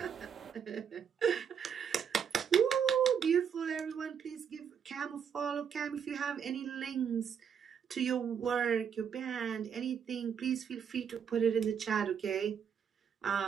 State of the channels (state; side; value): quieter; left; 7.5 dB